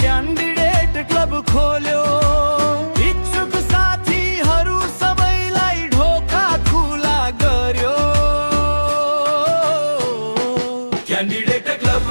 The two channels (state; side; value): inverted; both; correlation -1.00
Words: क्यान्डिडेट क्लब खोल्यो, इच्छुक साथीहरू सबैलाई ढोका खुला गर्यो। क्यान्डिडेट